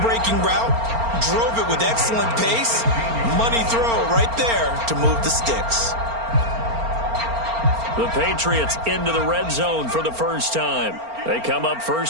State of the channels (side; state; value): left; late; 4.4 ms